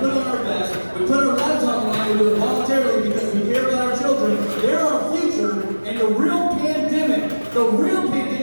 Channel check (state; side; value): inverted; both; correlation -1.00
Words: on our vest, we put our lives on the line, we do it voluntarily because we care about our children. They're our future, and the real pandemic